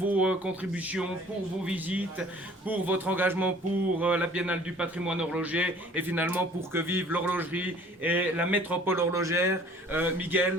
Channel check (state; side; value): normal; both; correlation 0.52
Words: contributions, pour vos visites, pour votre engagement pour la biennale du patrimoine horloger et finalement pour que vive l'horlogerie et la métropole horlogère.